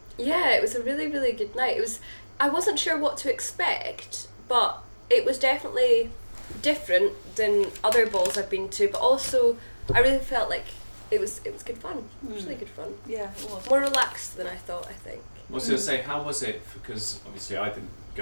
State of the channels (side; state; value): both; inverted; correlation -1.00